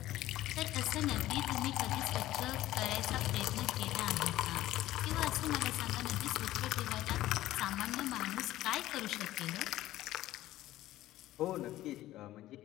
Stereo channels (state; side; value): quieter; right; 15.1 dB